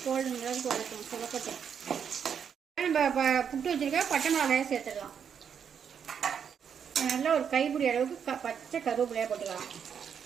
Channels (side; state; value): left; quieter; 7.6 dB